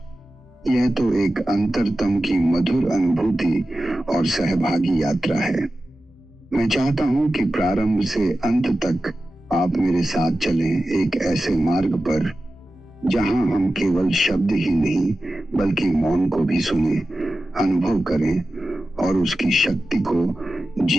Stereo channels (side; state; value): both; normal; correlation 0.94